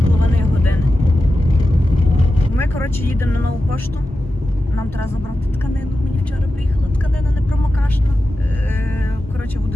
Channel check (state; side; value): normal; both; correlation 0.92